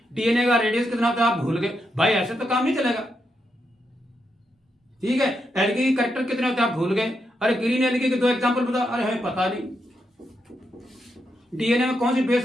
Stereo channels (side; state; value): both; normal; correlation 0.82